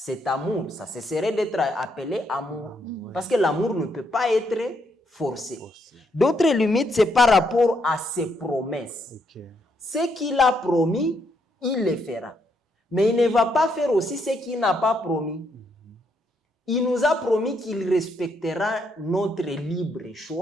amour, ça cesserait d'être appelé amour. Parce que l'amour ne peut pas être forcé. D'autres limites, c'est par rapport à ses promesses. Ce qu'il a promis, il le fera. Mais il ne va pas faire aussi ce qu'il n'a pas promis. Il nous a promis qu'il respectera notre libre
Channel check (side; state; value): both; normal; correlation 0.75